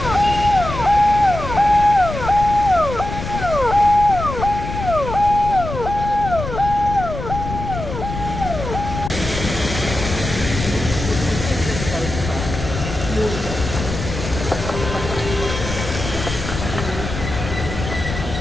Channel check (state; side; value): noise; left; rumble, 7 dB below the sound